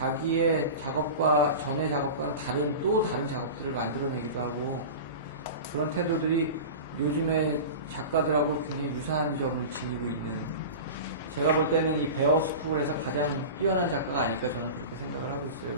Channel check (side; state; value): both; inverted; correlation -0.30